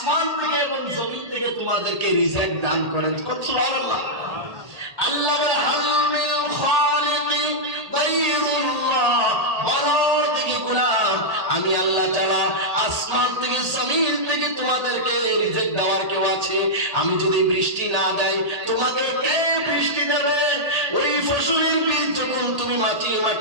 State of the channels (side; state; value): left; late; 1.8 ms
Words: থেকে এবং জমিন থেকে তোমাদেরকে রিজিক দান করেন। সুবহানাল্লাহ। আল্লাহ বলে হাল মিন খালিকিন গায়রুল্লাহ, বলো দেখি গোলাম আমি আল্লাহ ছাড়া আসমান থেকে জমিন থেকে তোমাদেরকে রিজিক দেওয়ার কেউ আছে? আমি যদি বৃষ্টি না দেই তোমাকে কে বৃষ্টি দেবে? ওই ফসলের বীজ যখন তুমি